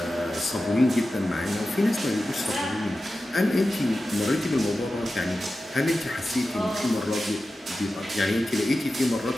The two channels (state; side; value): normal; both; correlation 0.93